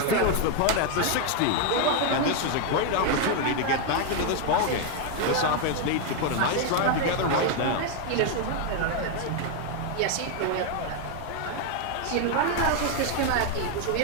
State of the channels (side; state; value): both; different; correlation 0.01